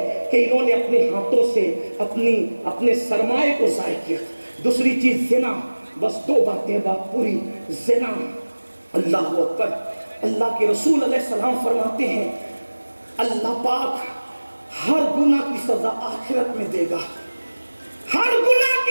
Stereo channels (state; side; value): inverted; both; correlation -1.00